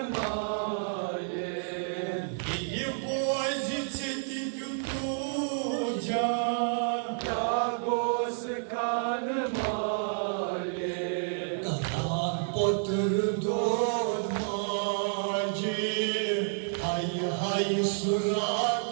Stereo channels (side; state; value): left; silent; digital silence